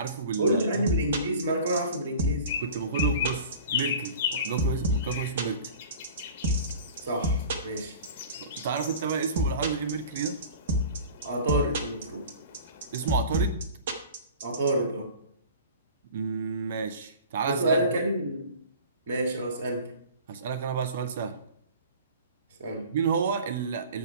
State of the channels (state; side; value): inverted; both; correlation -0.41